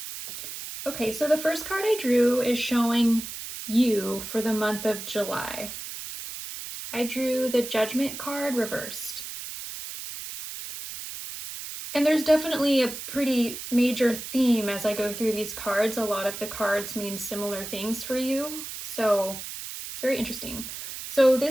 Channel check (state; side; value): noise; right; hiss, 9 dB below the sound